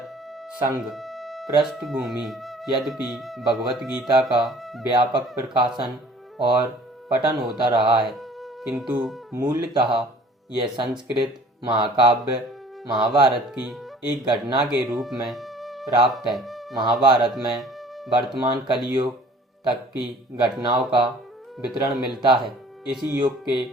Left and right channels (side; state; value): both; normal; correlation 0.51